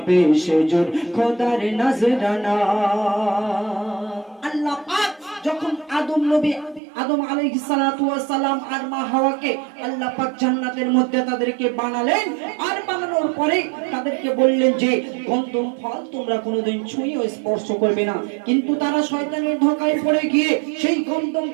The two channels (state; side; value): drops out; left; at 6.8 s